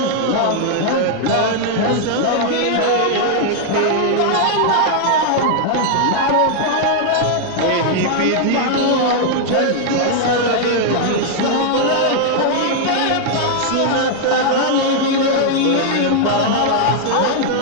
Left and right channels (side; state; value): both; different; correlation 0.00